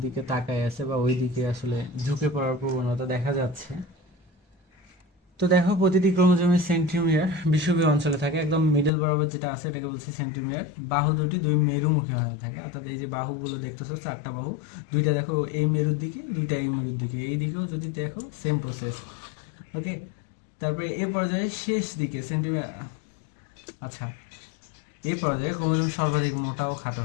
দিকে তাকায় আছে বা ওই দিকে আসলে ঝুঁকে পড়ার প্রবণতা দেখা যাচ্ছে। তো দেখো প্রতিটি ক্রোমোজোমের সেন্টিমিটার বিষুবীয় অঞ্চলে থাকে, একদম মিডল বরাবর যেটা আছে এটাকে বলছে সেন্টিমিটার। বাহু দুটি দুই মেরুমুখী হয়ে থাকে, অর্থাৎ এই যে বাহুগুলো দেখতেছো 4টা বাহু, দুইটা দেখো এই মেরুর দিকে, দুইটা এই মেরুর দিকে, এই দিকেও যদি দেখো সেম প্রসেস। ওকে, তারপরে এ পর্যায়ে শেষ দিকে সেন্টিমিটার, আচ্ছা এ পর্যায়ে ক্রোমোজোম সর্বাধিক মোটা ও খাটো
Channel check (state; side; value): drops out; right; at 8.9 s